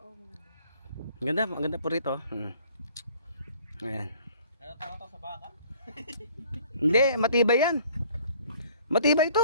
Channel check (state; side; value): inverted; both; correlation -0.55